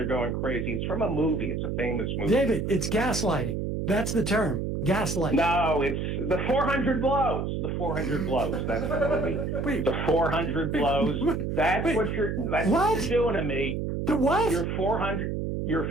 going crazy. It's from a movie. It's a famous movie. David, it's gaslighting. That's the term. Gaslighting. No, it's the 400 blows. The 400 blows. That's the movie. Wait. The 400 blows. That's what you're doing to me. The what? You're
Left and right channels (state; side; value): noise; right; hum, 2 dB below the sound